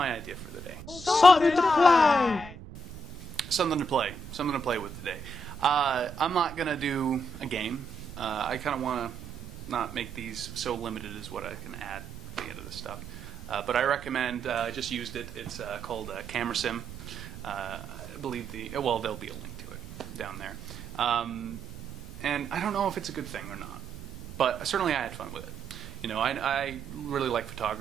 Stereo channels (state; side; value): noise; right; rumble, 14 dB below the sound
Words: idea for the day. Something to play! Something to play with today. I'm not going to do a game. I kind of want to not make these so limited as what I can add at the end of this stuff. But I recommend, I just used it, it's called CameraSim. I believe there'll be a link to it down there. And I don't know if it's a good thing or not, but certainly I had fun with it. You know, I really like